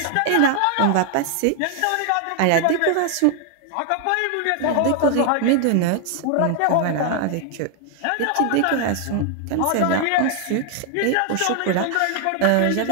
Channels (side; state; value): both; different; correlation 0.00